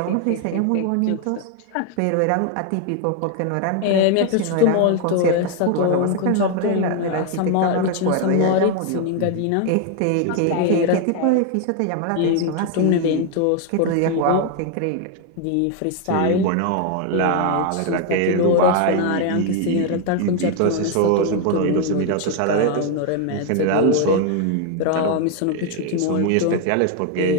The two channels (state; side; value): different; both; correlation 0.01